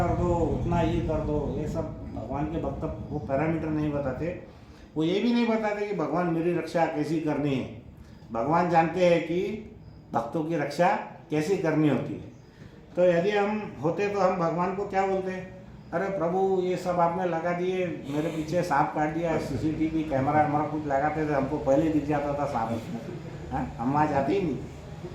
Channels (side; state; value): both; identical; correlation 1.00